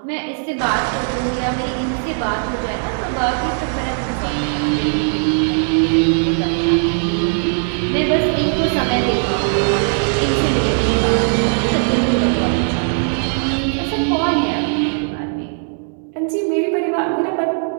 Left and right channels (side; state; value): left; silent; 60 dB below the other